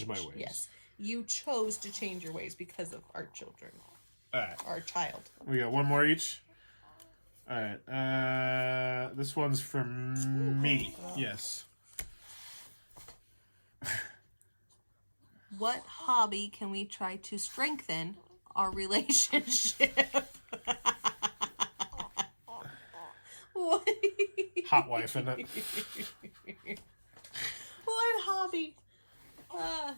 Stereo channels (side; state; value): both; inverted; correlation -1.00